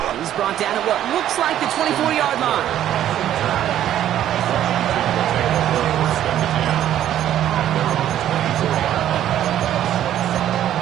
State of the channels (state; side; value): quieter; left; 11.5 dB